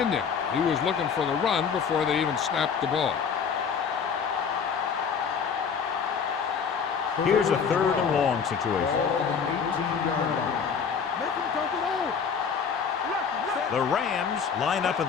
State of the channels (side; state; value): right; quieter; 6.4 dB